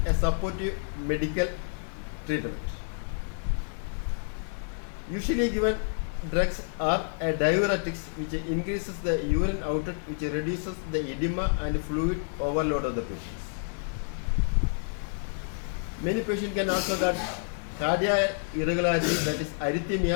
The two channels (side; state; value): right; silent; 59 dB below the other